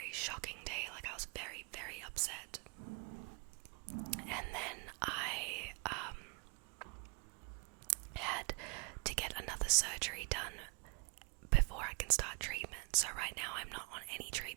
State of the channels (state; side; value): quieter; left; 35.2 dB